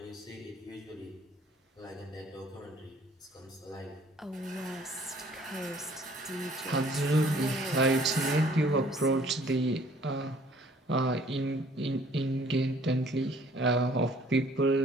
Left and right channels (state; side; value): normal; both; correlation 0.57